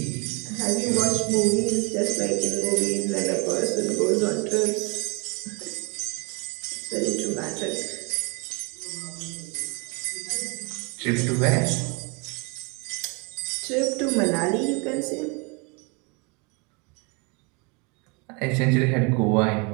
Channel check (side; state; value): left; quieter; 31.2 dB